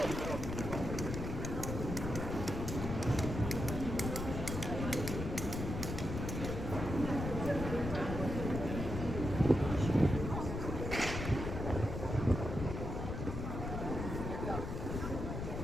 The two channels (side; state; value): left; noise; rumble, 4 dB below the sound